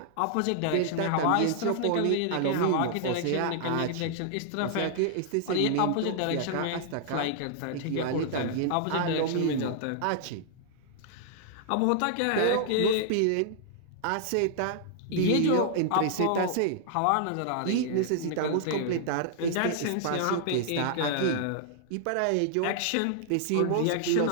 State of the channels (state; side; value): different; both; correlation -0.01